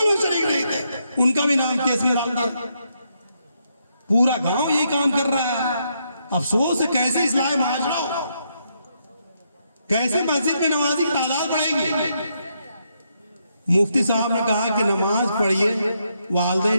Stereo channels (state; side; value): inverted; both; correlation -0.78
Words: میں شریک نہیں تھے، ان کا بھی نام کیس میں ڈال دیا۔ پورا گاؤں یہی کام کر رہا ہے۔ افسوس ہے، کیسے اصلاح معاشرہ ہو، کیسے مسجد میں نمازی کی تعداد بڑھے گی۔ مفتی صاحب نے کہا کہ نماز پڑھیے،